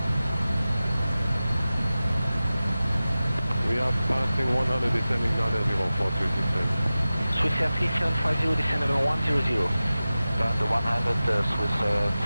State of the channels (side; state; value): both; inverted; correlation -0.96